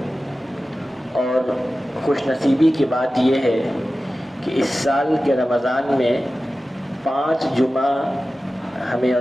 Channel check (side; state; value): both; normal; correlation 0.95